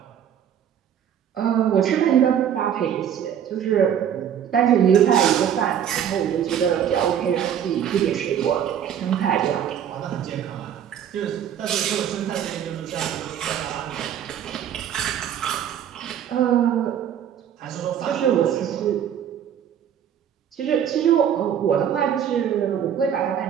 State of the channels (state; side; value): quieter; left; 9.3 dB